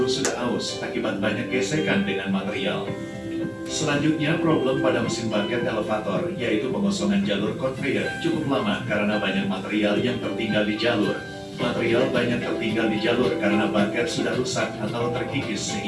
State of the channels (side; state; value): both; identical; correlation 1.00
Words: sudah aus akibat banyak gesekan dengan material. Selanjutnya, problem pada mesin bucket elevator yaitu pengosongan jalur conveyor cukup lama karena banyak material yang tertinggal di jalur. Material banyak tertinggal di jalur karena bucket sudah rusak atau terkikis